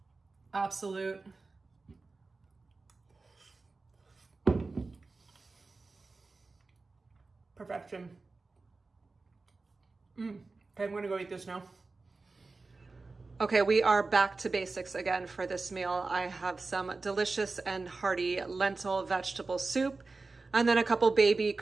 absolute perfection. Okay, I'm gonna go eat this now. Okay, we are back to basics again for this meal. I have some delicious and hearty lentil vegetable soup, and then a couple baby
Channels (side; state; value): left; quieter; 3.7 dB